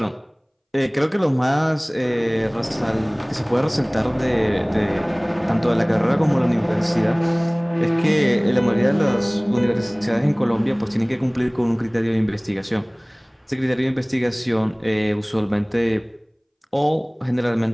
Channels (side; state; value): both; identical; correlation 1.00